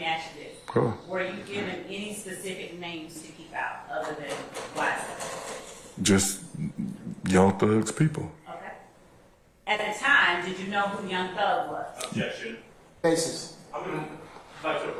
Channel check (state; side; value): identical; both; correlation 1.00